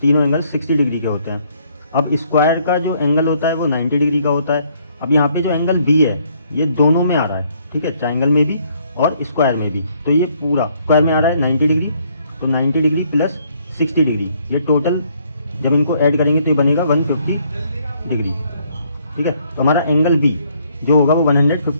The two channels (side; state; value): both; inverted; correlation -0.67